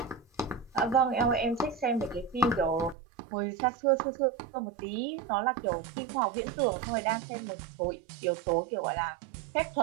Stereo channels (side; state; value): left; drops out; at 3.0 s